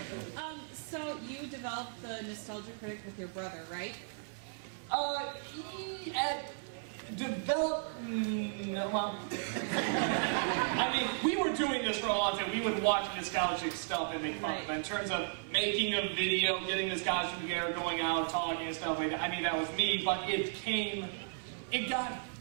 So you developed the Nostalgia Critic with your brother, right? I mean, we were doing this for a long time. We would watch nostalgic stuff and make fun of it. In terms of making a video, getting this costume together, going out, talking and stuff like that, I mean, that was me, but it got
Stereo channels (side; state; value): left; silent; digital silence